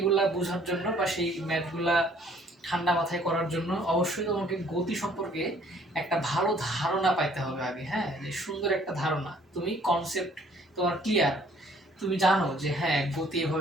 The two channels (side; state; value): both; normal; correlation 0.59